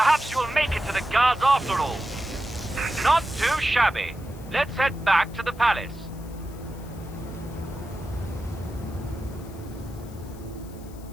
you'll make it to the guards after all. Not too shabby. Let's head back to the palace.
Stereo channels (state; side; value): noise; left; hiss, 23 dB below the sound